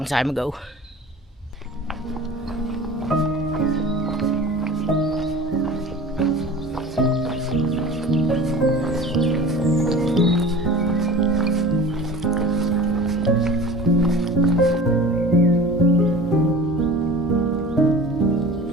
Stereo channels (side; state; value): both; normal; correlation 0.38